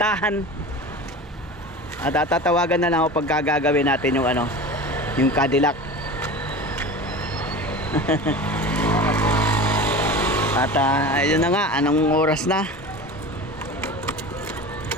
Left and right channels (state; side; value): normal; both; correlation 0.33